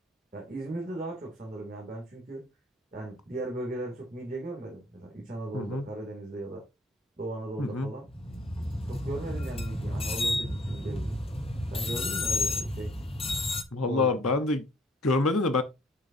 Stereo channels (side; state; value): both; normal; correlation 0.59